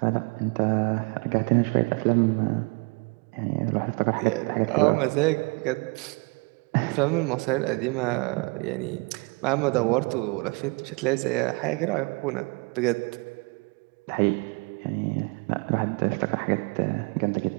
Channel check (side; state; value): left; quieter; 29.9 dB